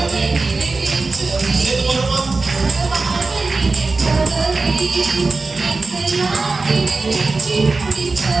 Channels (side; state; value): left; quieter; 3.8 dB